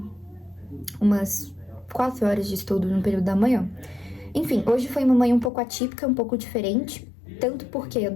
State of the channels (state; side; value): drops out; right; at 5.5 s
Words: umas 4 horas de estudo no período da manhã. Enfim, hoje foi uma manhã um pouco atípica, um pouco diferente, tanto porque eu